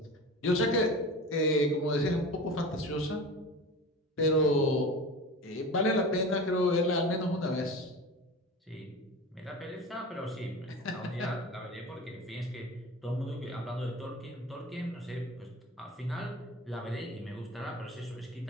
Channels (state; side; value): normal; both; correlation 0.33